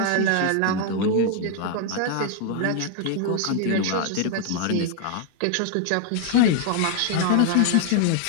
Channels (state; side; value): different; both; correlation 0.00